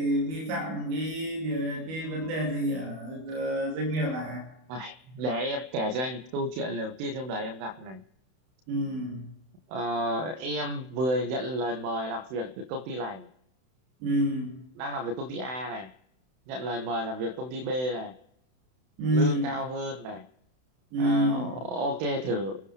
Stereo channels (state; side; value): late; left; 31 ms